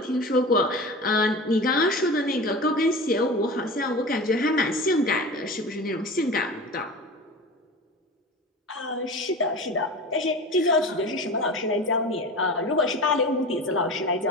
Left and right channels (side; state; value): both; normal; correlation 0.32